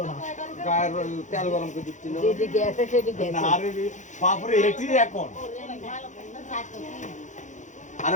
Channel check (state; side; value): late; right; 0.35 ms